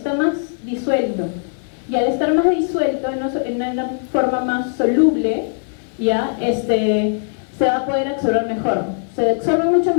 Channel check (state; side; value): silent; right; 64 dB below the other